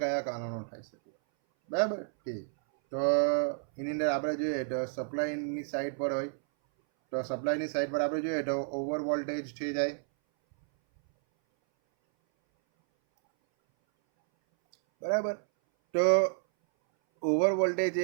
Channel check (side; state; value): left; silent; 57 dB below the other